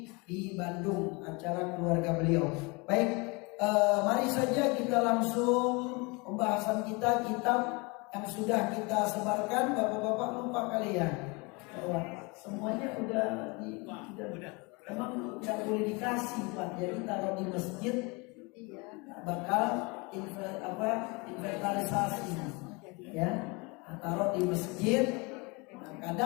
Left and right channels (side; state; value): right; quieter; 28.2 dB